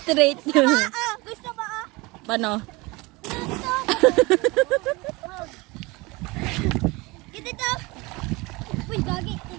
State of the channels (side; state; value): left; quieter; 24.0 dB